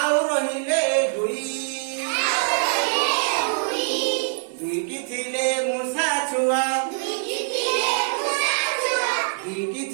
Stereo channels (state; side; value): silent; left; 63 dB below the other